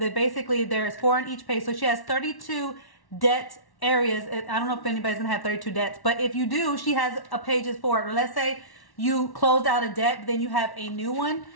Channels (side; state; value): right; late; 1.1 ms